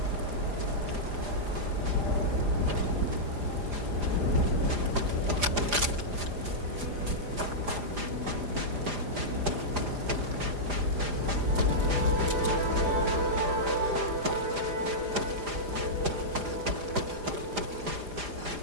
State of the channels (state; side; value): late; left; 4.9 ms